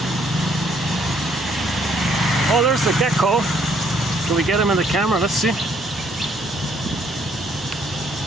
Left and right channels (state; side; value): normal; both; correlation 0.66